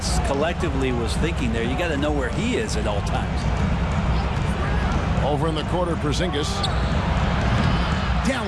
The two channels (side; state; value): both; identical; correlation 1.00